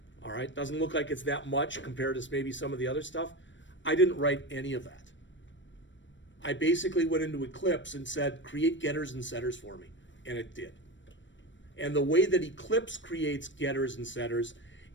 all right, doesn't look like it's that much compared to maybe some of the other stuff. I didn't write any of that. I basically went into Eclipse and said, create getters and setters for me, and it did. And the way that Eclipse creates getters and setters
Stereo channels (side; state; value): right; late; 0.54 ms